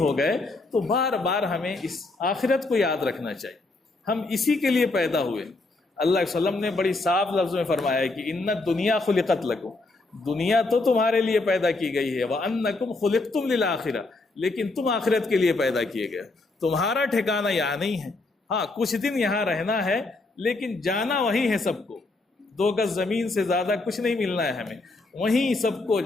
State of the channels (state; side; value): quieter; right; 3.2 dB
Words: گئے، تو بار بار ہمیں اس آخرت کو یاد رکھنا چاہیے۔ ہم اسی کے لیے پیدا ہوئے۔ اللہ علیہ وسلم نے بڑی صاف لفظ میں فرمایا ہے کہ ان الدنیا خلقت لکم، دنیا تو تمہارے لیے پیدا کی گئی ہے، وانکم خلقتم للآخرہ، لیکن تم آخرت کے لیے پیدا کیے گئے، تمہارا ٹھکانہ یہاں نہیں ہے۔ ہاں کچھ دن یہاں رہنا ہے، لیکن جانا وہیں ہے سب کو، 2 گز زمین سے زیادہ کچھ نہیں ملنا ہے ہمیں، وہیں سب کو